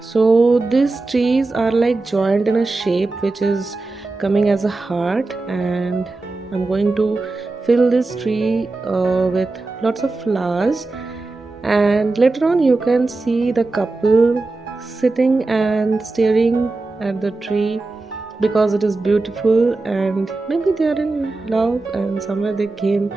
So these trees are like joined in a shape which is coming as a heart, and I'm going to fill this tree with lots of flowers. And later on you can see the couple sitting and staring at the tree, because it is beautiful, and maybe they are in love and somewhere they came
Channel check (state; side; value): quieter; left; 3.4 dB